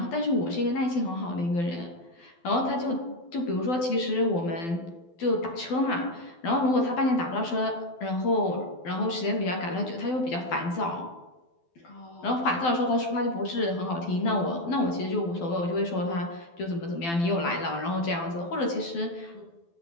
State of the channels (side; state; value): right; late; 12 ms